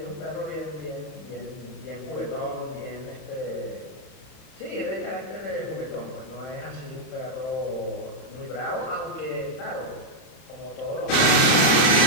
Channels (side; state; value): right; late; 31 ms